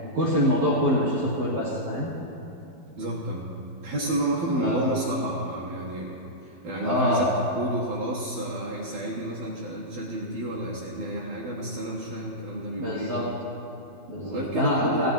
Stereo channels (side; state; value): left; late; 12 ms